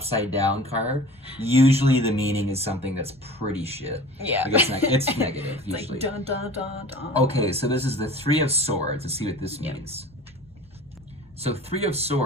down card, usually the meaning is something that's pretty shit. Yeah. Like it's negative, It's usually. like dun dun dun dun. Okay, so this is the 3 of Swords. Let's see what this means. So 3 of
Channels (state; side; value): normal; both; correlation 0.42